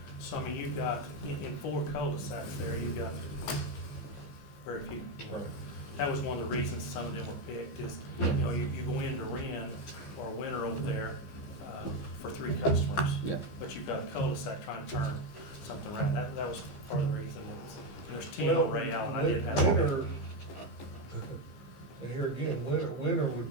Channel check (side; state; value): right; late; 15 ms